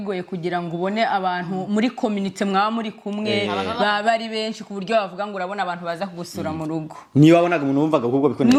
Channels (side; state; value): both; identical; correlation 1.00